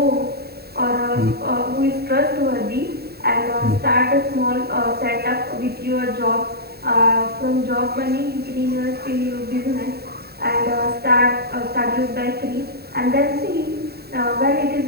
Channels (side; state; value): left; late; 0.46 ms